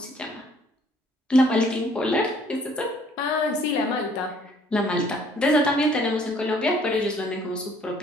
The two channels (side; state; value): both; normal; correlation 0.60